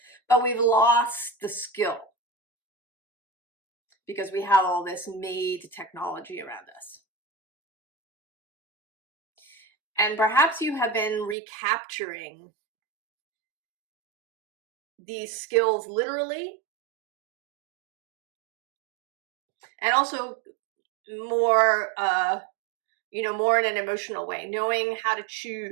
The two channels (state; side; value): drops out; left; at 11.4 s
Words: But we've lost the skill because we have all this made technology around us. And perhaps you have been recapturing these skills literally, and also more, you know, more in an emotional way, knowing how to